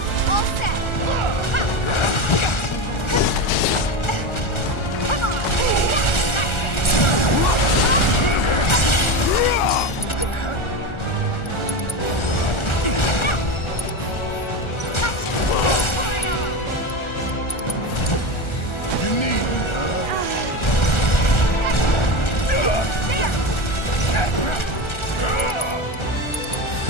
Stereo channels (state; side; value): late; right; 1.4 ms